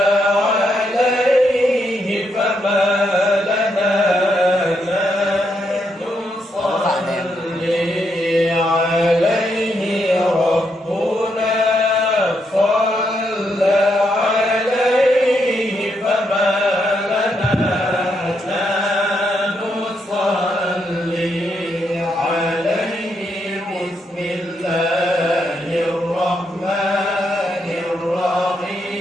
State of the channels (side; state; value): both; normal; correlation 0.79